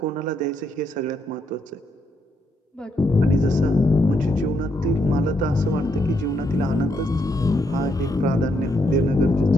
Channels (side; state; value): both; normal; correlation 0.77